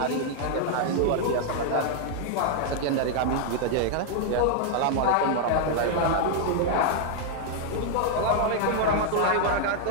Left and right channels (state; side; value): different; both; correlation -0.01